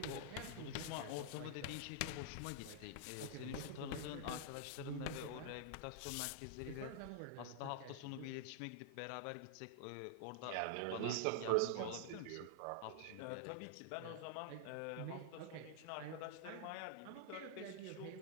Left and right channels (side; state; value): both; different; correlation -0.01